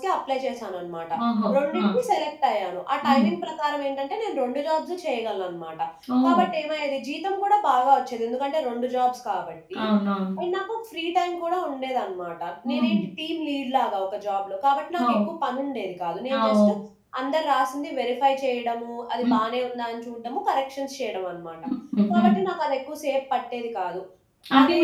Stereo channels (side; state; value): both; identical; correlation 1.00